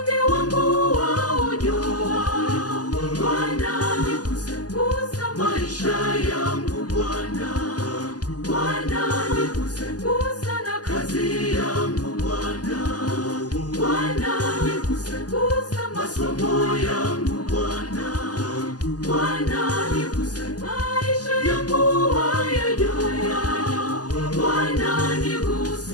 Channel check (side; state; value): right; late; 0.68 ms